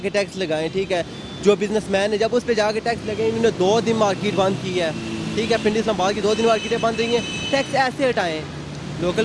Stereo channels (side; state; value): both; identical; correlation 1.00